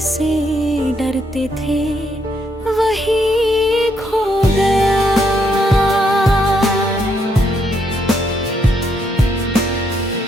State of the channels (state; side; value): normal; both; correlation 0.75